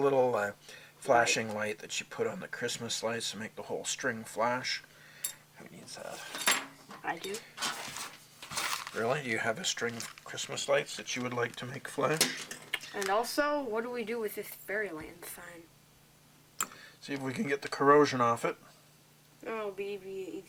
flashing light that you put on the Christmas lights to make the whole string flash. Who needs that? I do. Really? Do you have a string of Christmas lights that you would like to make flash? And also, what do we do with this Fairyland sign? See if we can get the corrosion off it. Oh, it'll be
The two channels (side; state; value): both; identical; correlation 1.00